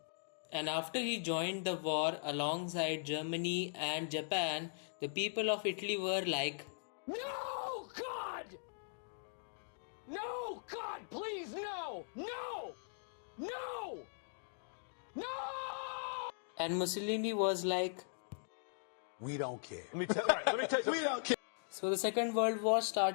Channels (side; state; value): right; silent; digital silence